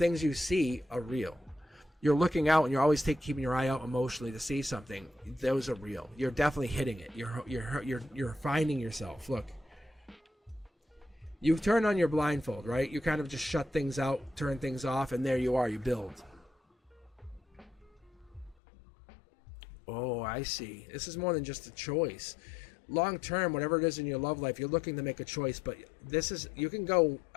you see are real. You're looking out and you're always keeping your eye out emotionally to see something. Those are real. You're definitely hitting it. You're finding yourself. Look. You've turned on your blindfold, right? You kind of just shut things out, turn things off, and there you are. You build. Oh, I see. This is more than just a choice. long term, whatever it is in your love life, you're looking to make a choice. But this is, you can go,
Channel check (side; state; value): right; drops out; at 18.6 s